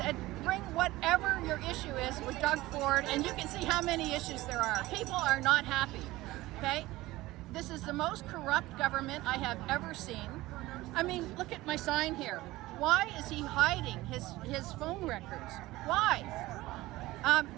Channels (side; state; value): left; quieter; 18.3 dB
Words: bring whatever your issue is with Doug Ford, and you can see how many issues there are. People are not happy, okay? This is the most corrupt government I have ever seen. I mean, look at my sign here. Why is he hiding his phone records? Why?